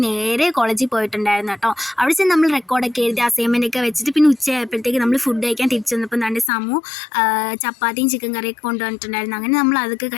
നേരെ കോളേജിൽ പോയിട്ടുണ്ടായിരുന്നു കേട്ടോ. അവിടെ ചെന്ന് നമ്മൾ റെക്കോർഡൊക്കെ എഴുതി അസൈൻമെൻ്റ് ഒക്കെ വെച്ചിട്ട് പിന്നെ ഉച്ചയായപ്പോഴത്തേക്ക് നമ്മൾ ഫുഡ് കഴിക്കാൻ തിരിച്ചു വന്നപ്പോൾ നല്ല ചപ്പാത്തിയും ചിക്കൻ കറിയൊക്കെ കൊണ്ടുവന്നിട്ടുണ്ടായിരുന്നു. അങ്ങനെ നമ്മൾ അതൊക്കെ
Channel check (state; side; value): drops out; right; at 6.5 s